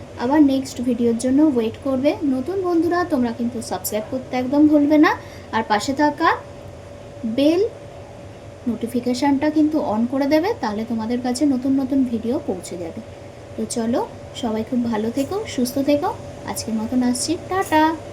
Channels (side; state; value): both; identical; correlation 1.00